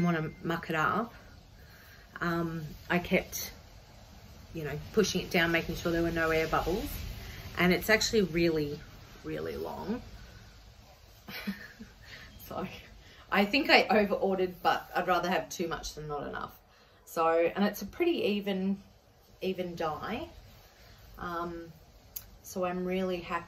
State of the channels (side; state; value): both; identical; correlation 1.00